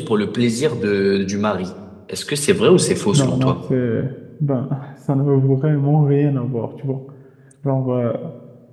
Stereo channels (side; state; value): both; identical; correlation 1.00